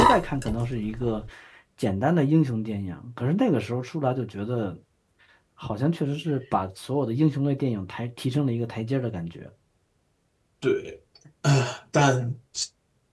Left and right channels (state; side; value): identical; both; correlation 1.00